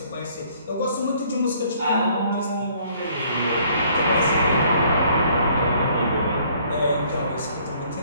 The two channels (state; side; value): inverted; both; correlation -0.61